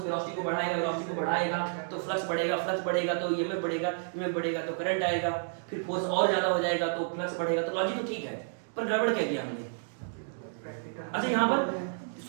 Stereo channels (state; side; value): silent; left; digital silence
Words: वेलोसिटी को बढ़ाएगा तो फ्लक्स बढ़ेगा तो ईएमएफ बढ़ेगा तो करंट आएगा, फिर फोर्स और ज्यादा हो जाएगा तो फ्लक्स बढ़ेगा, तो लॉजिक तो ठीक है, पर गड़बड़ क्या किया हमने। अच्छा यहाँ पर